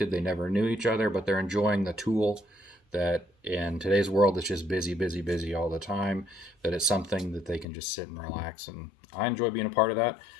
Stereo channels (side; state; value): right; drops out; at 7.7 s